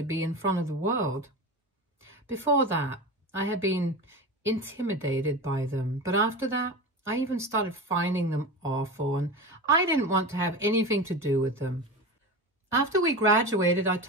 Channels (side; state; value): both; normal; correlation 0.27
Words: be in front of the world. Before that, I had been intimidated by them, but after that, I even started finding them awful, and I didn't want to have anything to do with them. After we graduated, I